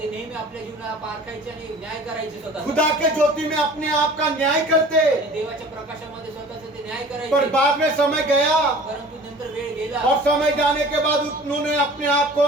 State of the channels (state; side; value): normal; both; correlation 0.45